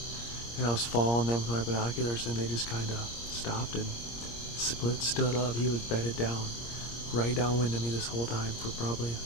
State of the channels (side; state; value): right; late; 26 ms